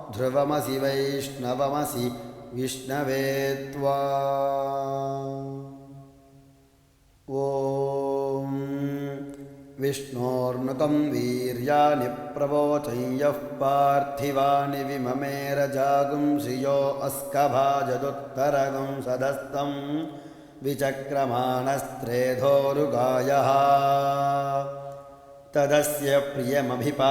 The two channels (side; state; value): both; identical; correlation 1.00